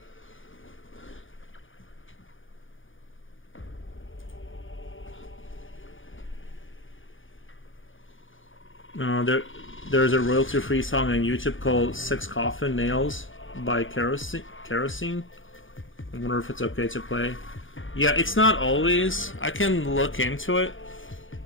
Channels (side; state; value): right; late; 0.58 ms